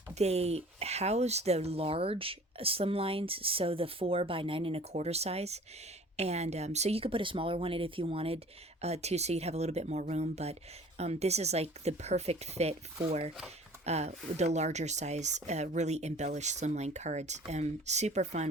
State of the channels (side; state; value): both; normal; correlation 0.48